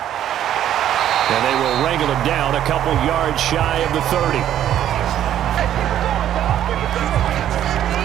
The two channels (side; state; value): left; quieter; 11.2 dB